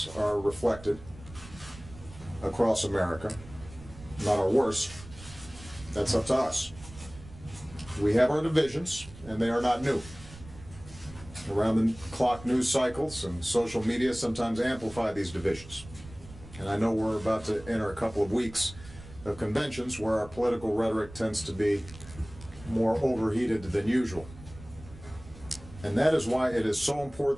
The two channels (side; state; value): right; noise; rumble, 17 dB below the sound